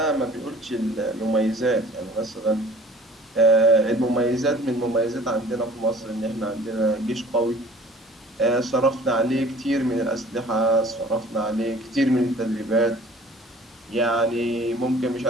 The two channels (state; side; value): normal; both; correlation 0.49